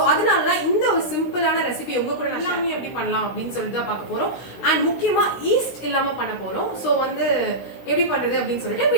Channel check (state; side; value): late; right; 16 ms